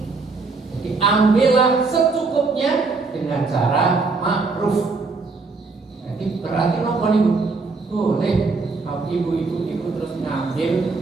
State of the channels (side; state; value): left; quieter; 4.0 dB